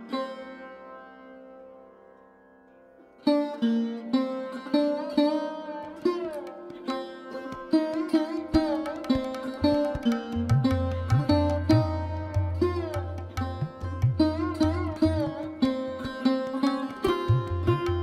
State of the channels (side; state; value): both; identical; correlation 1.00